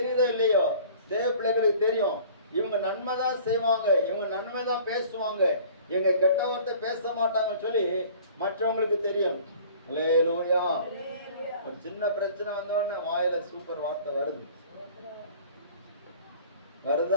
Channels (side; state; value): both; inverted; correlation -0.48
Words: இல்லையோ, தேவ பிள்ளைகளுக்கு தெரியும். இவங்க நன்மை தான் செய்வாங்க, இவங்க நன்மை தான் பேசுவாங்க, இவங்க கெட்ட வார்த்தை பேச மாட்டாங்கன்னு சொல்லி மற்றவங்களுக்கு தெரியும். அல்லேலூயா. ஒரு சின்ன பிரச்சனை வந்தோடனே வாயில சூப்பர் வார்த்தை